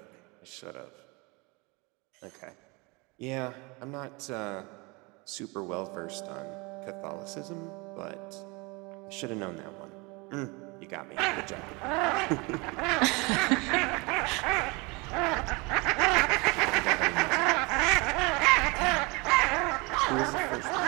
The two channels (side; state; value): left; quieter; 27.2 dB